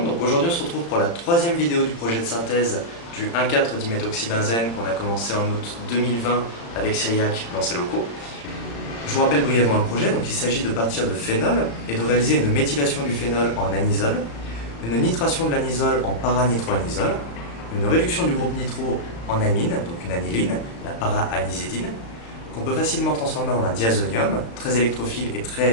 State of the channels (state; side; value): late; right; 35 ms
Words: donc aujourd'hui on se retrouve pour la troisième vidéo du projet de synthèse du 1,4-diméthoxybenzène qu'on a commencé en août 2020 avec Cyriac dans ses locaux. Je vous rappelle brièvement le projet, donc il s'agit de partir de phénol et de réaliser une méthylation du phénol en anisole, une nitration de l'anisole en para-nitroanisole, une réduction du groupe nitro en amine, donc une aniline, la para-anizidine, qu'on peut facilement transformer en un diazonium, très électrophile et